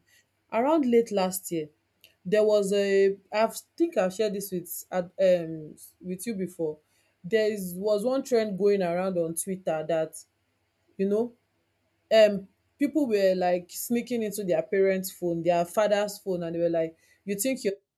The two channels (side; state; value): both; identical; correlation 1.00